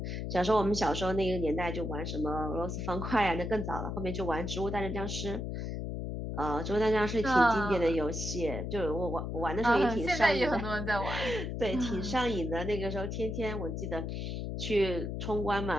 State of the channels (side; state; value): left; noise; hum, 4 dB below the sound